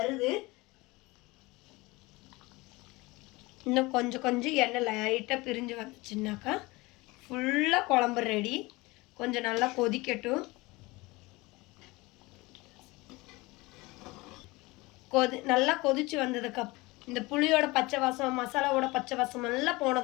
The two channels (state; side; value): quieter; right; 22.6 dB